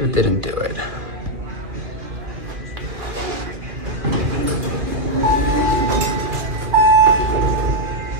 didn't do it.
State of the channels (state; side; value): late; left; 2.4 ms